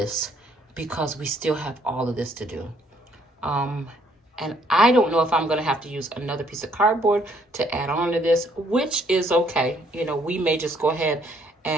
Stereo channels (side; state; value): both; normal; correlation 0.67